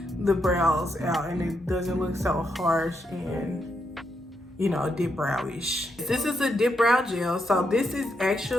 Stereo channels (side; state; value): both; normal; correlation 0.80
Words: the brows out and it doesn't look so harsh and, you know, dip browish. This is a dip brow gel. So this is